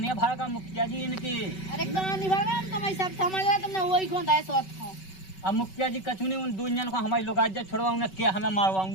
भर का मुखिया जी इनकी। अरे कहाँ नहीं भगा, हम तुम्हें सब समझ रहे, तुमने वही को दाए सोच को। अब मुखिया जी कछु नहीं उन दो जन को हमारी लोग आज छोड़वा उन्हें क्या हमें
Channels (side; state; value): right; late; 5.3 ms